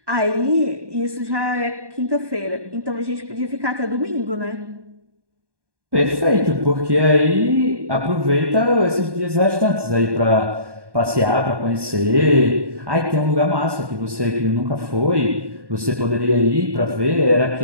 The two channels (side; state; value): left; late; 1.1 ms